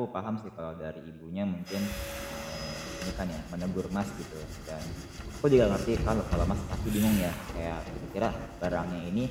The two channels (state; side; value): identical; both; correlation 1.00